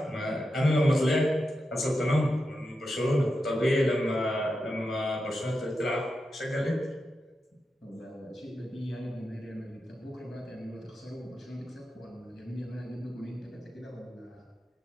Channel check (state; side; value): normal; both; correlation 0.88